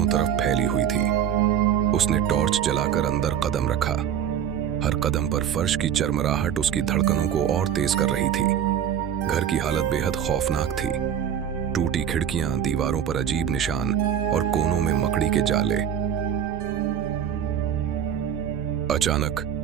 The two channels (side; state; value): left; quieter; 9.0 dB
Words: तरफ फैली हुई थी। उसने टॉर्च जलाकर अंदर कदम रखा। हर कदम पर फर्श की चरमराहट उसकी धड़कनों को और तेज कर रही थी। घर की हालत बेहद खौफनाक थी। टूटी खिड़कियां, दीवारों पर अजीब निशान और कोनों में मकड़ी के जाले।